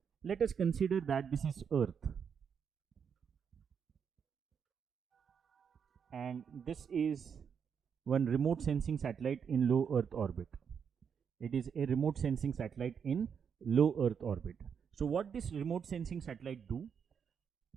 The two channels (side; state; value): left; quieter; 7.0 dB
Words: let us consider that this is Earth. and this is one remote sensing satellite in low Earth orbit. It is a remote sensing satellite in low Earth orbit. So what this remote sensing satellite do?